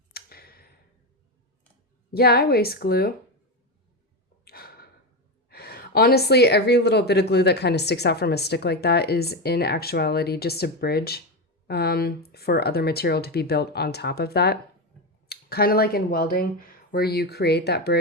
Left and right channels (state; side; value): normal; both; correlation 0.14